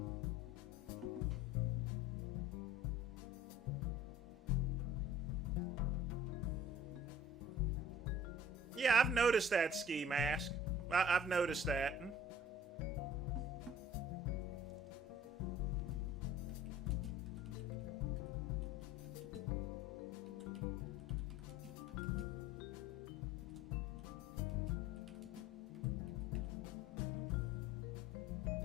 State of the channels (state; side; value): normal; both; correlation 0.48